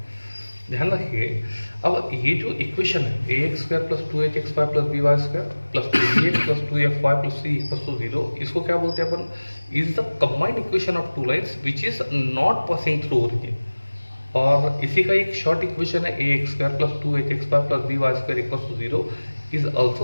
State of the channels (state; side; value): inverted; both; correlation -1.00